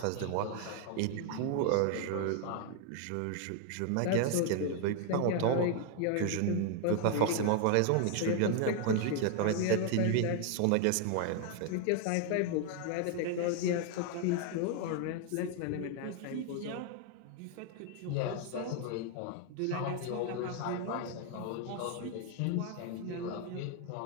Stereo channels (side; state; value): both; different; correlation 0.00